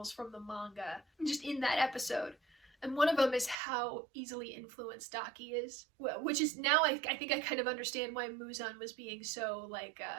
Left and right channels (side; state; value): left; drops out; at 3.6 s